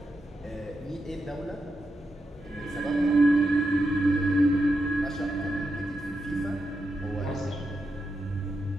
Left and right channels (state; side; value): normal; both; correlation 0.87